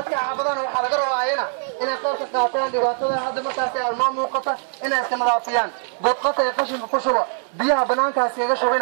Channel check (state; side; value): silent; left; 59 dB below the other